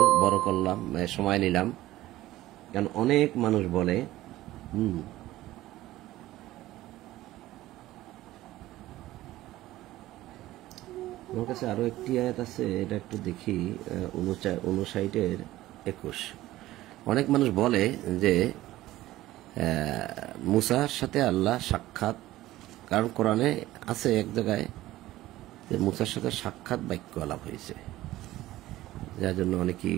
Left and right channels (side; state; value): left; quieter; 16.0 dB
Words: বড় করলাম, সময় নিলাম, কারণ অনেক মানুষ বলে আমার কাছে আরো একটি আয়াত আছে, এটা একটু দেখি, 59-21। অনেক মানুষ বলে যে মুসার সাথে আল্লাহ সাক্ষাৎ, কারণ কোরআনে আছে এক জায়গায় যে মুসার সাথে সাক্ষাৎ বাক্য আলাপ হয়েছে, যার জন্য অনেকেই